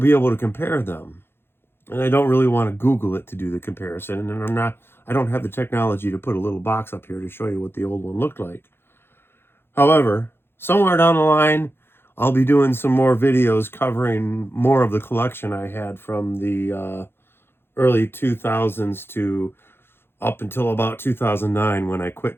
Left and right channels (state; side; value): late; right; 0.11 ms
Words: be able to compare them. And I don't really want to Google it to do the comparison. And I don't have the technology to put a little box up here to show you what the old one looked like. However, somewhere down the line, I'll be doing some more videos covering more of the collection I had from the early 2000s to up until about 2009 when I quit